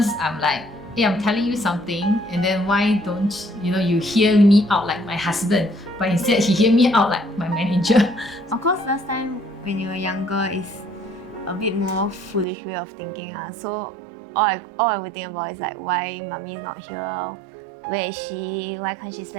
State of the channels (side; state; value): left; drops out; at 12.5 s